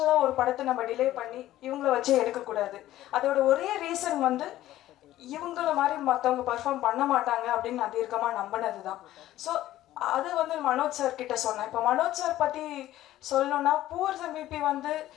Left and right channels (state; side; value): quieter; right; 14.3 dB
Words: ஒரு படத்தை நம்ம டிலே பண்ணி இவங்கள வச்சே எடுக்கக்கூடாது. அதோட ஒரே ரீசன் வந்து இவங்கள மாதிரி மற்றவங்க பர்ஃபார்ம் பண்ண மாட்டாங்க அப்படின்னு நான் தீர்க்கமாக நம்பினது தான். ஸோ அது வந்து மனோஜ் சார் கிட்ட சொன்னேன். இப்போ மனோஜ் சார் பற்றி சொல்லணும்னா பூவர்ஸ் MVP வந்து